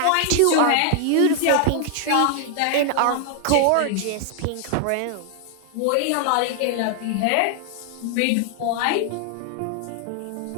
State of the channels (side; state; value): both; different; correlation 0.00